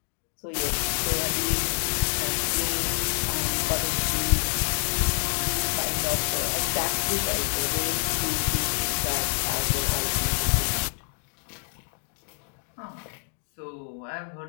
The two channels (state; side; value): silent; right; 60 dB below the other